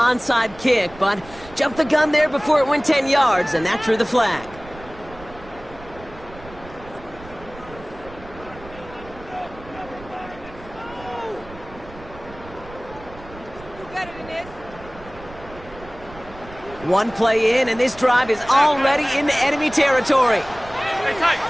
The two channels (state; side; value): noise; right; rumble, 18 dB below the sound